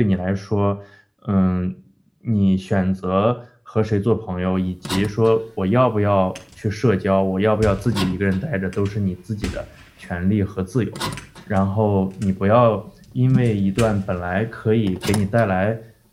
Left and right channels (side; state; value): both; identical; correlation 1.00